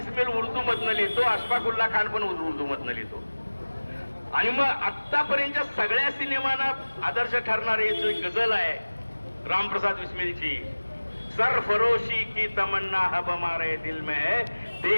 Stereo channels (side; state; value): both; inverted; correlation -1.00